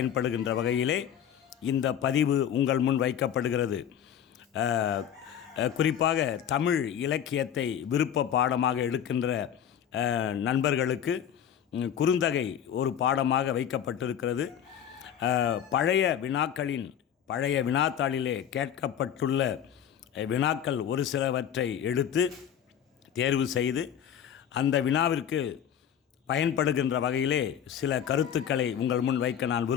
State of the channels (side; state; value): right; quieter; 9.2 dB